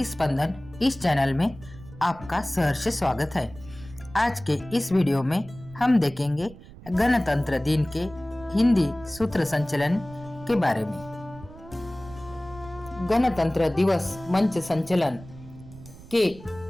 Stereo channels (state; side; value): noise; right; rumble, 18 dB below the sound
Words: स्पंदन इस चैनल में आपका सहर्ष स्वागत है। आज के इस वीडियो में हम देखेंगे गणतंत्र दिन के हिंदी सूत्र संचलन के बारे में। गणतंत्र दिवस मंच संचलन के